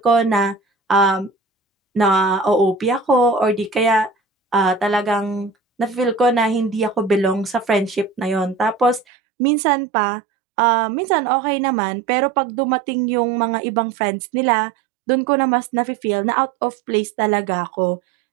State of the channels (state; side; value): drops out; left; at 9.1 s